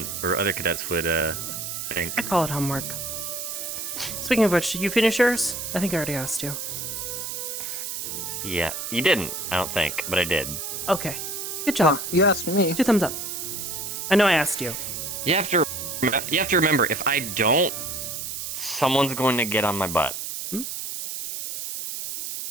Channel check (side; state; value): right; noise; hiss, 5 dB below the sound